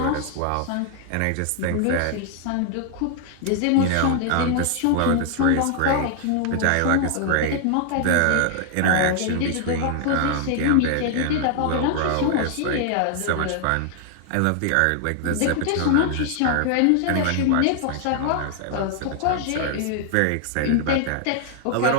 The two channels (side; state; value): both; different; correlation 0.00